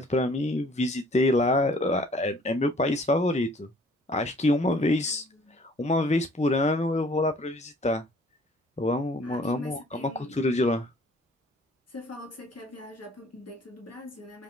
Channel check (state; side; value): normal; both; correlation 0.56